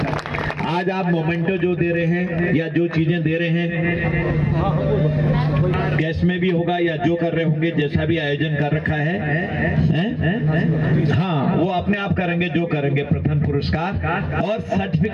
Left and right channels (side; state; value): both; identical; correlation 1.00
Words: आज आप मोमेंटो जो दे रहे हैं या जो चीजें दे रहे हैं, कैश में भी होगा या जो कर रहे होंगे, जैसा भी आयोजन कर रखा है, हाँ वो अपने आप करेंगे जो करेंगे। प्रथम पुरस्कार और